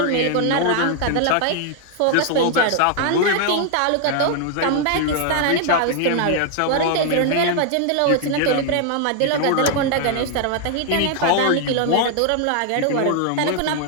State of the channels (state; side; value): different; both; correlation 0.00